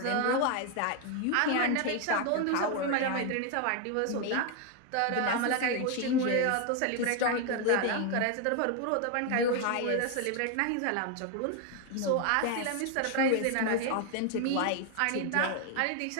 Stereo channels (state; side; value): different; both; correlation 0.01